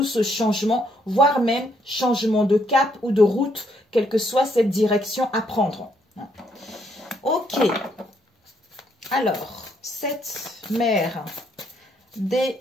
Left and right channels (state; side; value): normal; both; correlation 0.72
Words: ce changement, voire même changement de cap ou de route, quelle que soit cette direction à prendre. Ok. Alors, cette mère